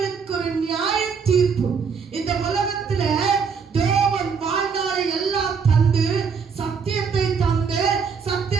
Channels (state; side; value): quieter; left; 5.9 dB